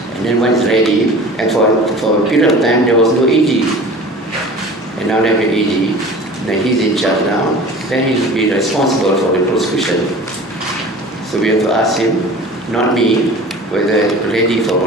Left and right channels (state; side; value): normal; both; correlation 0.41